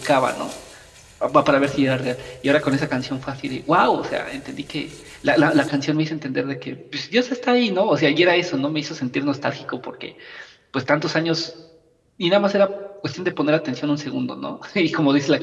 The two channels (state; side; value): identical; both; correlation 1.00